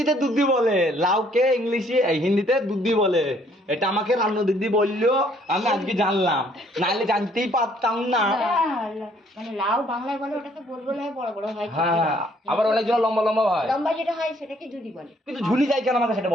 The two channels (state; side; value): normal; both; correlation 0.64